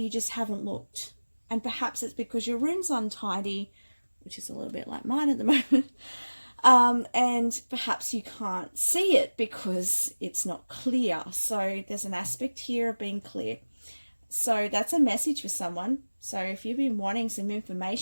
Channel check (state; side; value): inverted; both; correlation -1.00